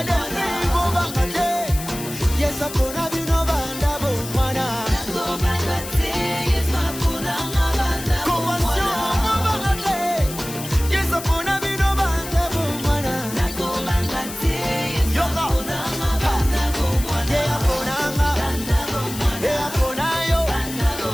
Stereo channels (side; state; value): left; noise; hiss, 10 dB below the sound